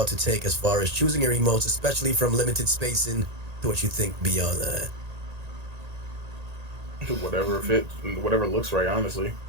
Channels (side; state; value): left; late; 1.8 ms